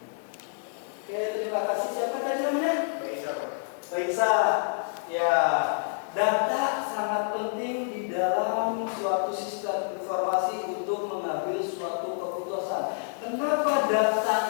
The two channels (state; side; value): silent; right; digital silence